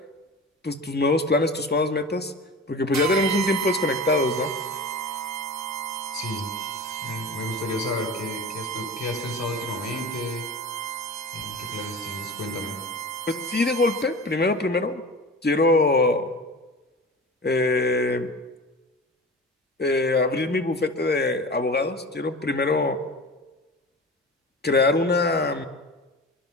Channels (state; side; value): normal; both; correlation 0.34